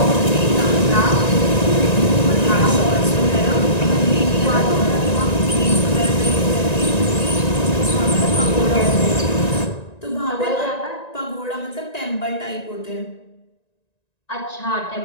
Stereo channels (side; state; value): right; late; 1.9 ms